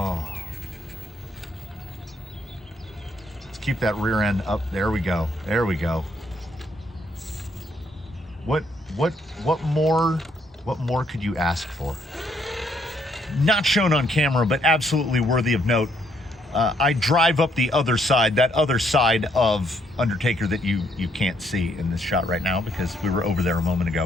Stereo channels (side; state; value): both; normal; correlation 0.71